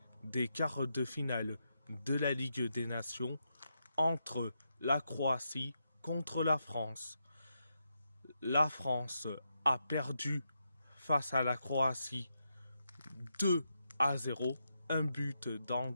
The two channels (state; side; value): inverted; both; correlation -0.83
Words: des quarts de finale de la Ligue des Nations entre la Croatie contre la France. La France a perdu face à la Croatie 2-0, un but d'Ante